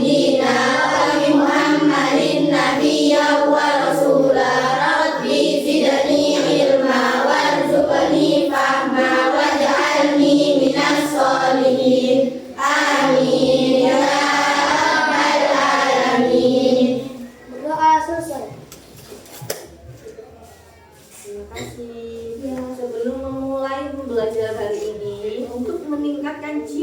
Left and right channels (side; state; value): both; identical; correlation 1.00